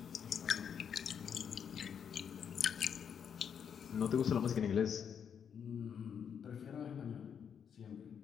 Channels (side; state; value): right; quieter; 7.7 dB